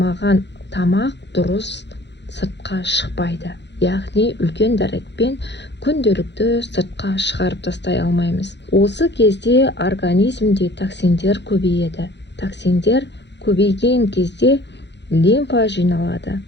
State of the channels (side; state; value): right; late; 0.51 ms